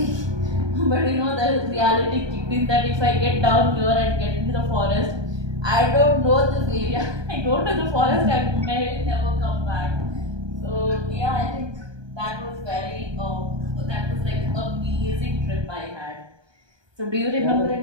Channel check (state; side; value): late; left; 1.2 ms